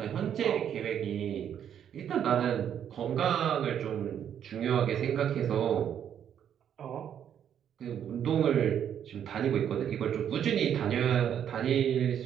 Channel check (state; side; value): quieter; left; 9.2 dB